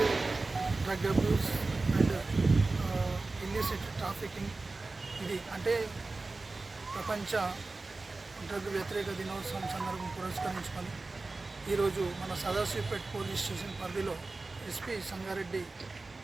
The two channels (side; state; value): left; quieter; 3.5 dB